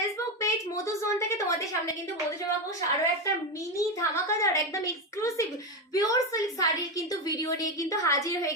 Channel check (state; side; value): normal; both; correlation 0.13